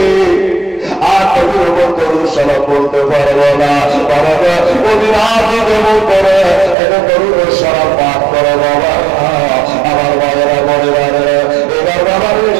আর নবীর উপর দরুদ সালাম বলতে পারবো না। বাবা মদিনার দিকে মুখ করে এটা দরুদ সালাম পাঠ করে বাবা। আমার বাবারা মনে এবার বাবা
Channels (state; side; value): drops out; left; at 6.8 s